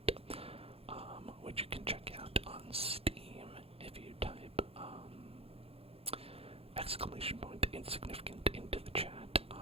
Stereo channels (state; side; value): late; left; 0.28 ms